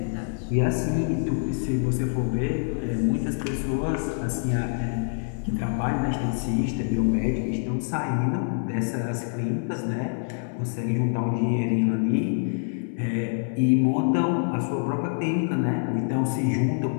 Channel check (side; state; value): right; silent; digital silence